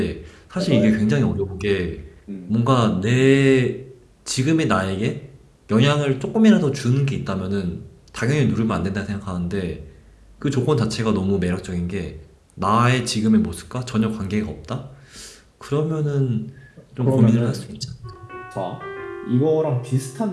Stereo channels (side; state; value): both; identical; correlation 1.00